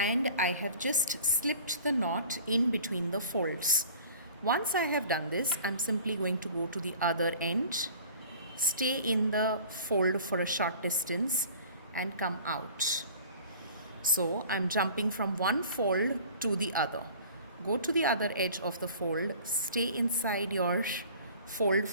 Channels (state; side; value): inverted; both; correlation -0.45